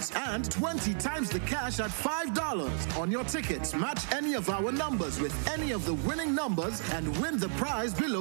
and 20 times the cash at $5. On your tickets, match any of our numbers with any of the winning numbers and win the prize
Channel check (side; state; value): left; silent; 56 dB below the other